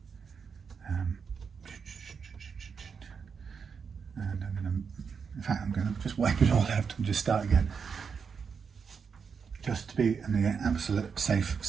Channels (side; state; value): left; quieter; 6.1 dB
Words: I'm going to just wipe it all out and just start again, just to be on the absolute safe